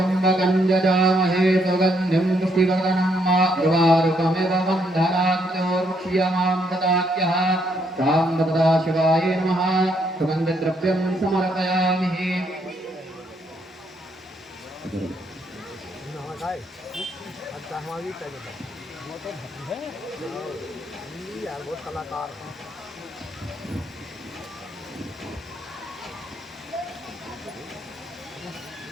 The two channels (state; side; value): normal; both; correlation 0.73